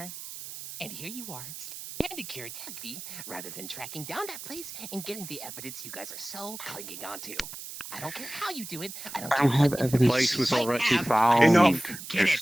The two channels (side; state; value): right; noise; hiss, 11 dB below the sound